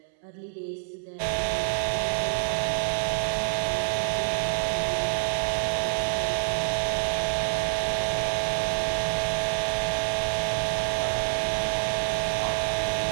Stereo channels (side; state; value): left; silent; 60 dB below the other